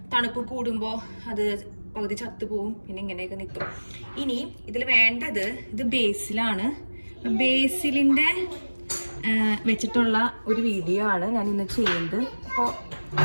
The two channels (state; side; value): inverted; both; correlation -1.00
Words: തണുപ്പ് കൂടുമ്പോൾ അത് പകുതി ചത്തുപോവും, പിന്നെ ഇങ്ങനെയൊക്കെ നിൽക്കും. ഇനി ഇതിൽ വേണ്ടത് ഇത് ബേസിലാണ്. ബേസിലിൻ്റെ വെച്ചിട്ടുള്ള ഒരു വീഡിയോ ആണ് ഞാൻ ഇന്ന് ചെയ്യുന്നത്. അപ്പോൾ